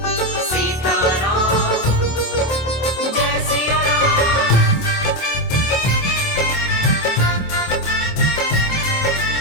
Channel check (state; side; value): late; right; 27 ms